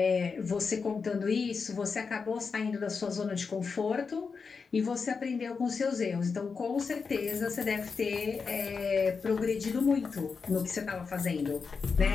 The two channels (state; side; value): quieter; right; 5.2 dB